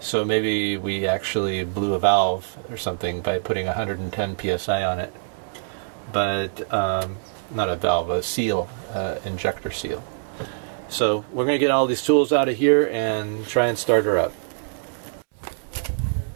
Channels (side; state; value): left; silent; digital silence